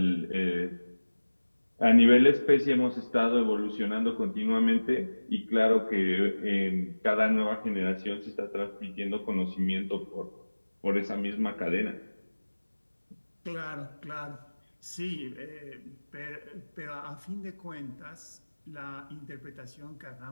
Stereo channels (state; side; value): inverted; both; correlation -1.00